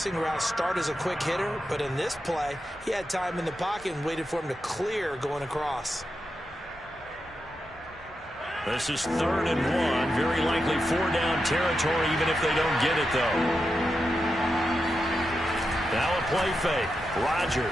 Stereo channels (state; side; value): normal; both; correlation 0.88